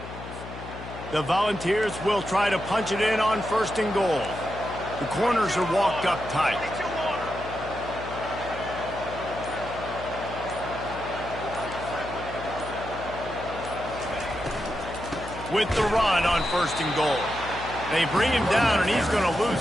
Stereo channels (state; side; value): noise; left; hum, 12 dB below the sound